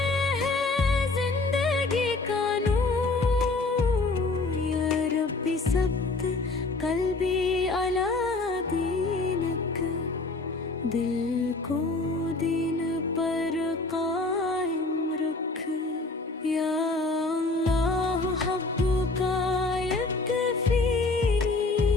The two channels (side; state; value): right; quieter; 3.4 dB